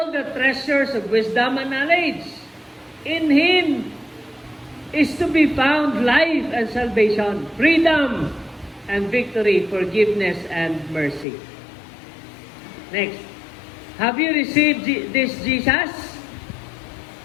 the treasures of wisdom and knowledge. In Him is to be found life and salvation, freedom and victory, forgiveness and mercy. Next. Have you received this Jesus?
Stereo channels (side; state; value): right; drops out; at 11.2 s